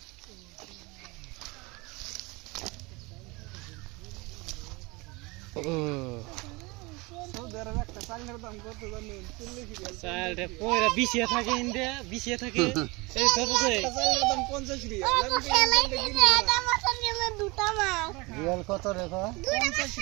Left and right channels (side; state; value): left; quieter; 25.2 dB